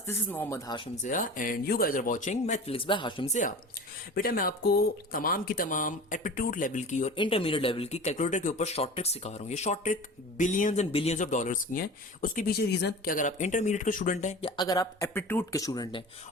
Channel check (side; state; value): both; normal; correlation 0.36